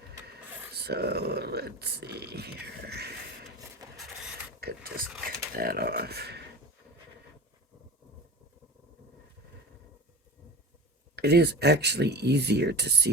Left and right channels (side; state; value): both; normal; correlation 0.33